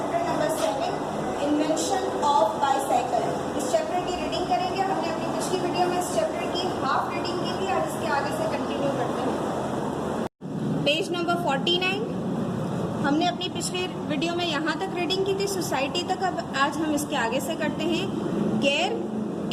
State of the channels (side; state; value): both; identical; correlation 1.00